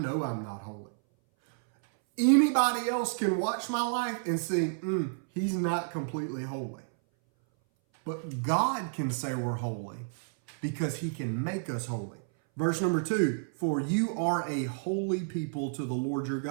I'm not holy. Anybody else can watch my life and see, he's not completely holy. But God can say we're holy because he can make us holy. Verse number 2, for you are a holy people to the Lord your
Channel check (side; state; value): left; silent; 57 dB below the other